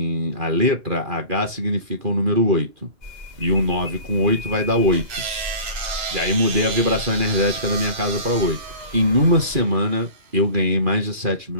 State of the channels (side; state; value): left; late; 2.4 ms